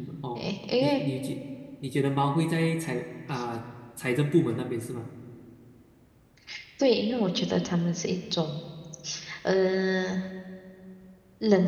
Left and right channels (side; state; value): both; identical; correlation 1.00